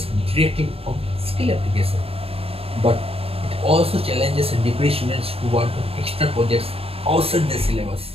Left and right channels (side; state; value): left; late; 0.28 ms